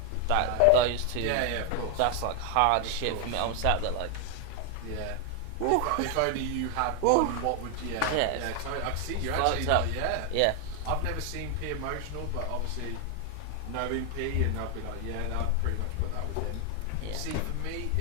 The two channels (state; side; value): different; both; correlation 0.01